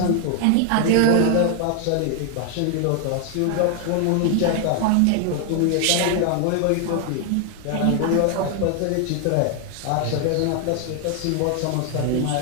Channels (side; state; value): both; different; correlation 0.00